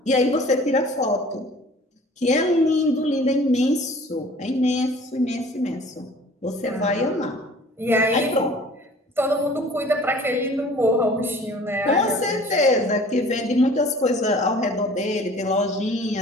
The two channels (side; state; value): both; normal; correlation 0.48